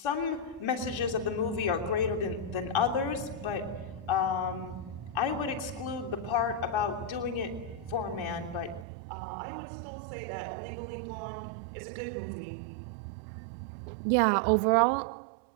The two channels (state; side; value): drops out; left; at 8.8 s